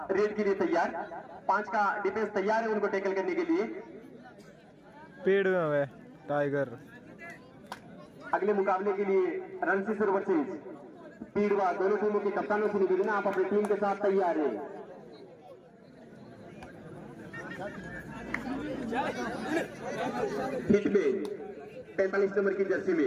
रेड के लिए तैयार। 5 का डिफेंस तैयार है उनको टैकल करने के लिए। पेड़ में है टाइगर। अगले मुकाबले के लिए रणसीसर वर्सेस पीड़वा दोनों टीमों के कप्तानों से निवेदन, आप अपनी टीम के साथ तैयार है। हिटमैन 45 नंबर की जर्सी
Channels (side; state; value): both; identical; correlation 1.00